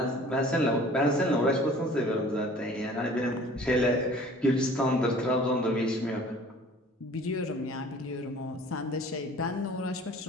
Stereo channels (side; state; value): both; normal; correlation 0.49